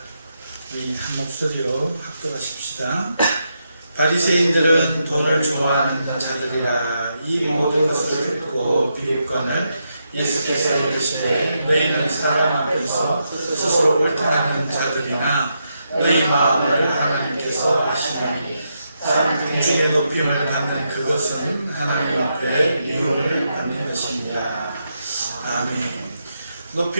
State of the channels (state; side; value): inverted; both; correlation -0.82